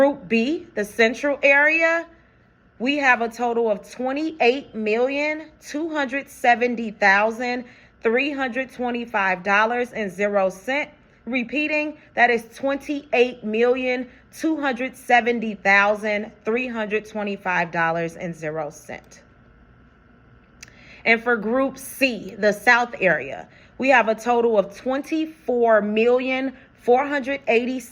B, the Central area, we have a total of $28,270,325.00. Repeating, that is $28,270,325.00. And for Group C, the South area, we have a total of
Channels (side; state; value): both; identical; correlation 1.00